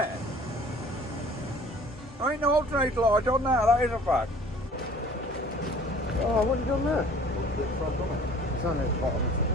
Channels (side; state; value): both; normal; correlation 0.50